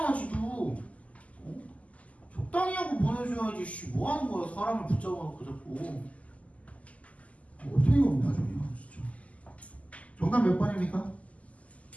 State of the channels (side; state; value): right; late; 0.069 ms